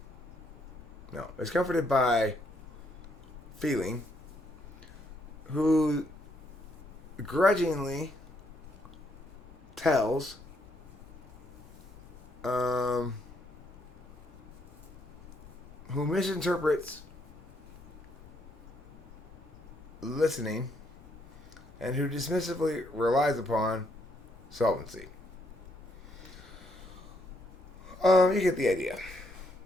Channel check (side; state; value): left; noise; rumble, 23 dB below the sound